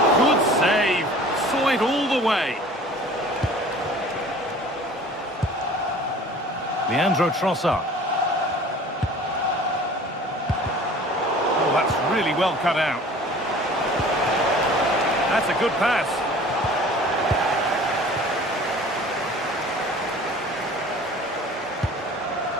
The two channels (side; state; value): both; normal; correlation 0.46